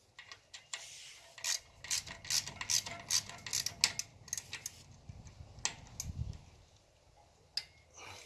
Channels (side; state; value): both; identical; correlation 1.00